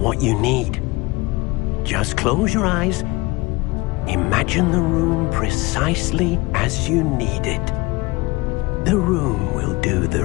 what you need. Just close your eyes. Imagine the room precisely as you need it. The room will do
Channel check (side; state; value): right; quieter; 23.0 dB